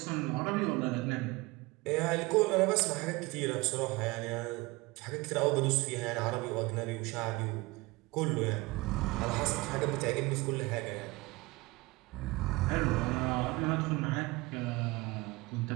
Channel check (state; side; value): quieter; left; 23.1 dB